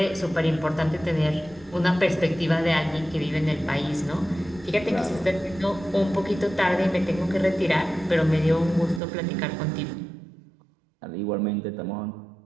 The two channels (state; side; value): drops out; left; at 9.0 s